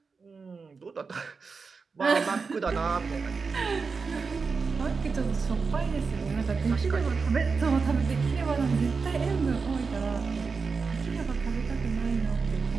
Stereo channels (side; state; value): left; quieter; 4.9 dB